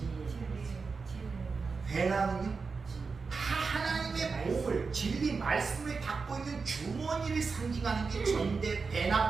배낭은요? 다 하나님의 복을, 진리 말씀을 담고 있는 주머니를 상징하는 게 전대,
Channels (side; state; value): left; quieter; 4.7 dB